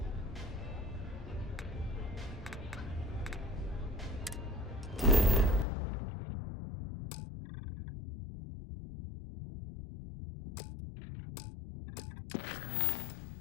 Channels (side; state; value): right; drops out; at 5.7 s